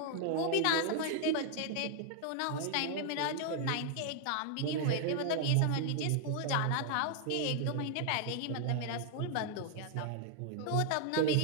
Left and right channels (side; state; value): both; different; correlation 0.00